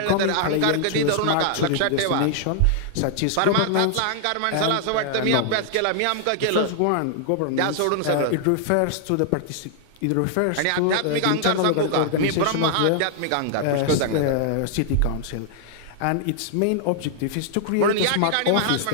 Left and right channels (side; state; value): both; different; correlation -0.01